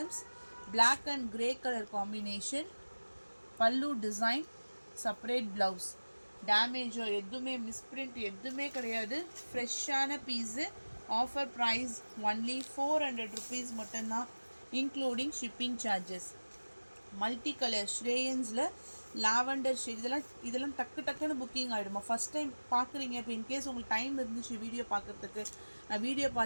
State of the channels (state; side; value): inverted; both; correlation -1.00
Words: Black and grey colour combination. Pallu design, separate blouse. டேமேஜோ எதுவுமே மிஸ்பிரிண்ட் எதுவுமே கிடையாது. ஃப்ரெஷ்ஷான piece. Offer price only 400 rupees மட்டும்தான், including shipping charges. Multi colour ஸ்ரேயன்ஸில் lavender shade, இதெல்லாம் டக்குன்னு புக்கிங் ஆகிடுமா. ஃபஸ்ட் டைம் பார்க்குறீங்க, இப்போ இன்கேஸ் உங்களுக்கு டைம் இருந்துச்சு வீடியோ பார்க்குறதுக்கு, நான் வீடியோ